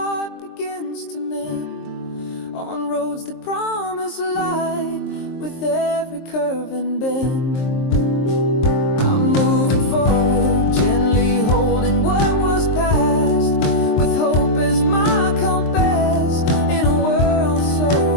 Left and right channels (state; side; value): late; right; 23 ms